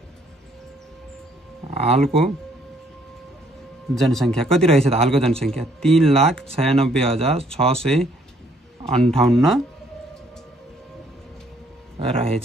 हालको जनसङ्ख्या कति रहेछ त हालको जनसङ्ख्या 3,96,658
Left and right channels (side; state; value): both; normal; correlation 0.66